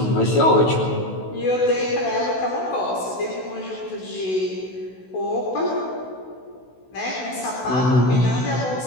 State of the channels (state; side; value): late; right; 16 ms